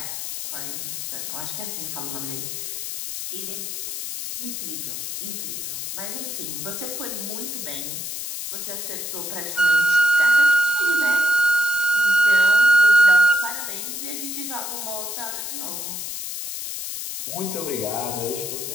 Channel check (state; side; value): noise; left; hiss, 6 dB below the sound